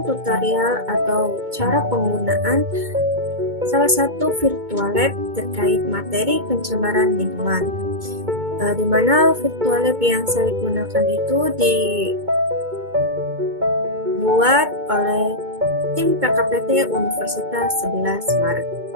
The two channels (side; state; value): left; late; 2.2 ms